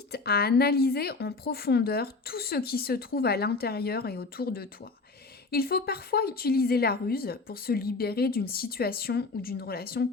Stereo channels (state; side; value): quieter; right; 3.8 dB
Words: à analyser en profondeur tout ce qui se trouve à l'intérieur et autour de toi. Il faut parfois utiliser la ruse pour se libérer d'une situation ou d'une relation